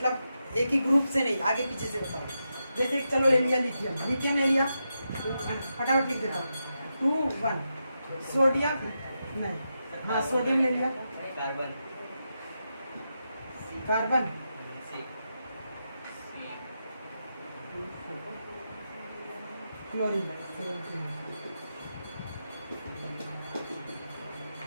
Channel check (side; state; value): both; inverted; correlation -0.87